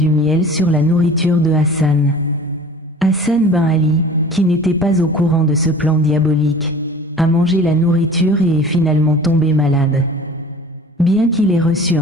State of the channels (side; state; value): both; normal; correlation 0.44